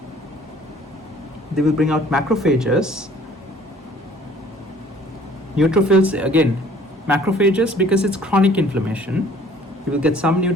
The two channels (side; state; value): both; normal; correlation 0.55